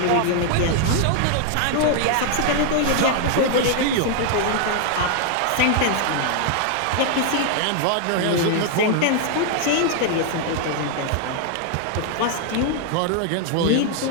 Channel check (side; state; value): both; different; correlation 0.00